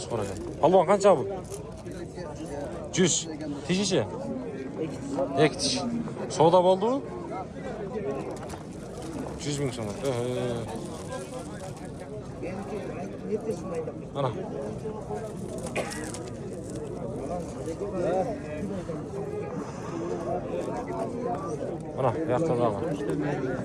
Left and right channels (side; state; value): both; identical; correlation 1.00